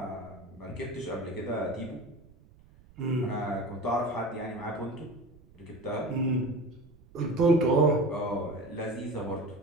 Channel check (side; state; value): right; noise; rumble, 25 dB below the sound